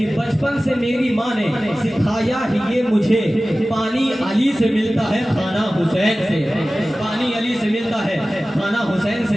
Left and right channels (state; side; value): normal; both; correlation 0.96